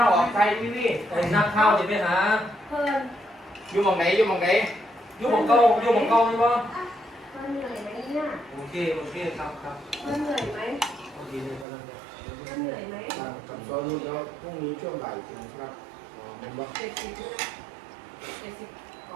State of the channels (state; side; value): drops out; left; at 11.7 s